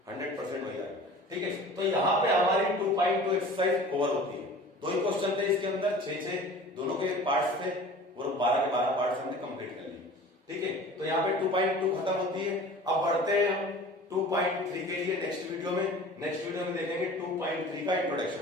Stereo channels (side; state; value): both; normal; correlation 0.42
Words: 100% वही आएगा। ठीक है, तो यहाँ पे हमारी 2.2 एक्सरसाइज कवर होती है। दो ही क्वेश्चन थे इसके अंदर, 6 दोनों के पार्ट्स थे और 12 के 12 पार्ट्स हमने कंप्लीट कर लिए। ठीक है, तो यहाँ पे 2.2 खत्म होती है। अब बढ़ते हैं हम 2.3 के लिए नेक्स्ट वीडियो में। नेक्स्ट वीडियो में देखेंगे 2.3 का